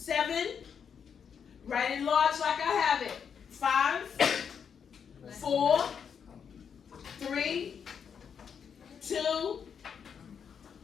write it large like I have it. 5, 4, 3, 2,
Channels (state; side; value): quieter; right; 7.1 dB